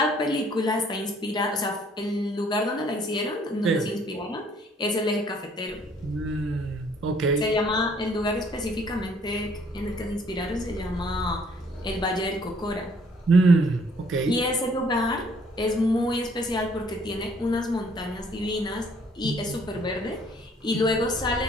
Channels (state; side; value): normal; both; correlation 0.61